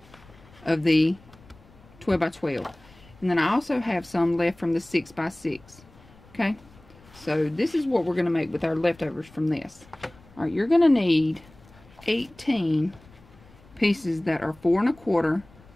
of the 12 by 12, and then I also have some left from the 6 by 6, okay. So this is what we're going to make with our leftovers from this. All right, you're going to need 18 pieces that are 4 1/4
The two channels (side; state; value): left; noise; rumble, 25 dB below the sound